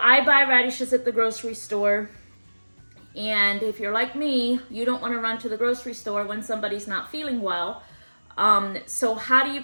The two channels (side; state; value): both; inverted; correlation -1.00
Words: buy radishes at the grocery store. And if you're like me, you don't want to run to the grocery store when somebody's not feeling well. So how do you